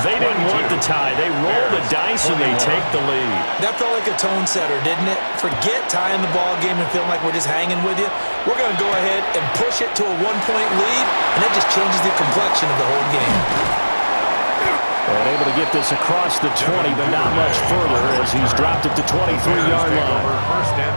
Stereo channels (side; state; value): both; inverted; correlation -1.00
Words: didn't want the tie. They roll the dice and they take the lead. That felt like a tone setter, didn't it? Forget tying the ball game and feeling like we're just hanging with you. We're going to go ahead and push it to a 1-point lead, and that just changes the complexion of the whole game. And able to get this across the 20, but not much further as he's dropped it to 23-yard line. First and